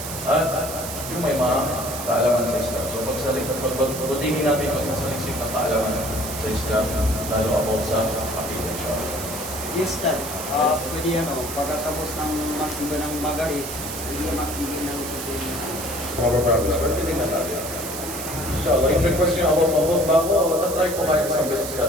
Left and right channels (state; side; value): noise; right; hiss, 8 dB below the sound